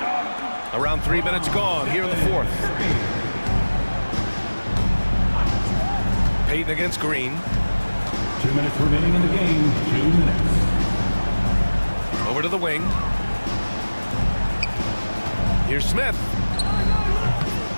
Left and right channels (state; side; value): inverted; both; correlation -1.00